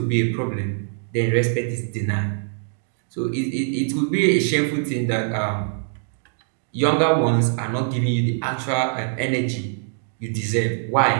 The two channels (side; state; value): left; silent; digital silence